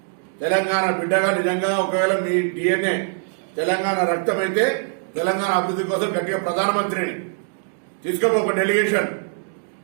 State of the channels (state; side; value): silent; left; 56 dB below the other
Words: తెలంగాణ బిడ్డగా నిజంగా ఒకవేళ మీ డిఎన్ఏ తెలంగాణ రక్తం అయితే తెలంగాణ అభివృద్ధి కోసం గట్టిగా ప్రధానమంత్రిని తీసుకోబో ఒక డెలిగేషన్.